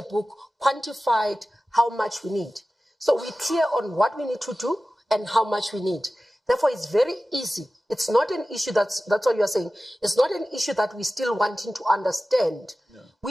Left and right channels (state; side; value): normal; both; correlation 0.95